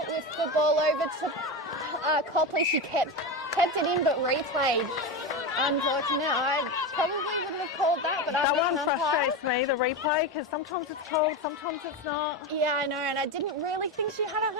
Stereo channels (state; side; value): normal; both; correlation 0.18